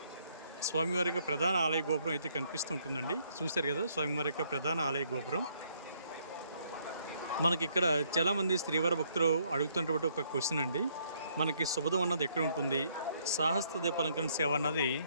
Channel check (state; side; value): inverted; both; correlation -0.69